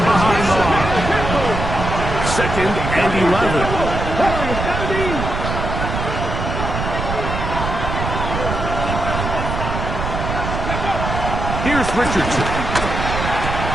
behind the line. Second and 11. Here's Richardson.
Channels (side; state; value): right; noise; rumble, 4 dB below the sound